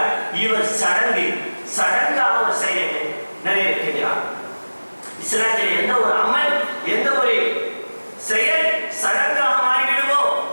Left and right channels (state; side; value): inverted; both; correlation -1.00